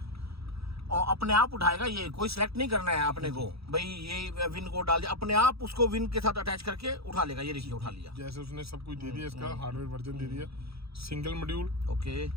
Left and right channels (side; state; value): left; late; 0.77 ms